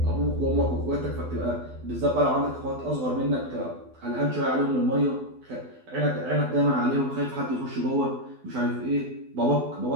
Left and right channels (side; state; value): left; late; 12 ms